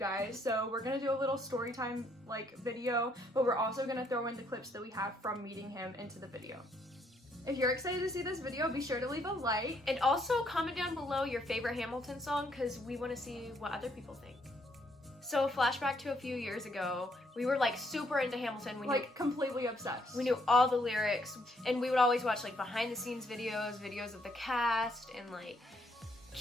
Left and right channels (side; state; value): both; normal; correlation 0.71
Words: So we're gonna do a little story time like video, but we're also gonna throw in the clips that we have from meeting him into the video. If you're excited to see this video, be sure to leave a like. And also comment down below your favorite Hamilton song, because we want to see what other people think. So flashback to a few years ago, we were like super into Hamilton. We like knew, completely obsessed. We knew all the lyrics, and we would always watch like behind the scenes videos of the cast, and like